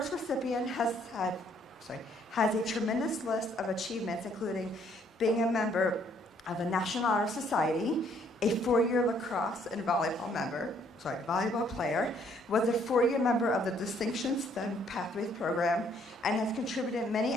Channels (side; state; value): both; normal; correlation 0.65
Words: recipient has a tremendous list of achievements, including being a member of the National Honor Society, a 4-year lacrosse and volleyball player, was a 4-year member of the Distinction STEM Pathways program, and has contributed many